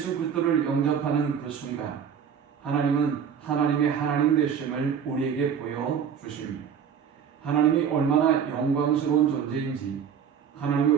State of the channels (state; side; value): quieter; left; 7.7 dB